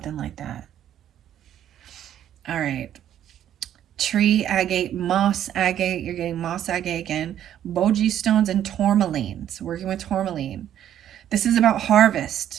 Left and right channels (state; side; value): quieter; left; 10.8 dB